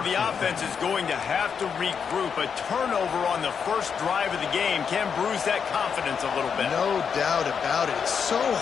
the offense is going to have to regroup. A turnover on the first drive of the game can bruise that confidence a little bit. No doubt about it. It's so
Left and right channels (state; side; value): quieter; right; 6.6 dB